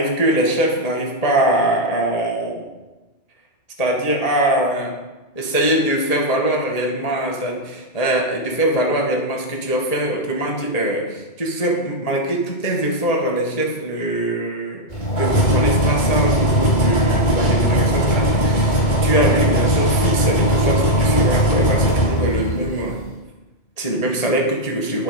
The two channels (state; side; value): late; right; 1.8 ms